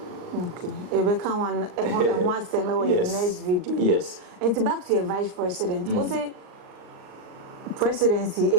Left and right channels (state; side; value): late; left; 39 ms